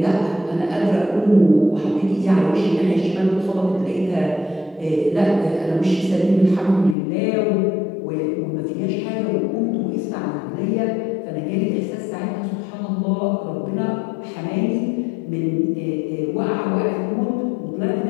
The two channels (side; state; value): right; drops out; at 7.0 s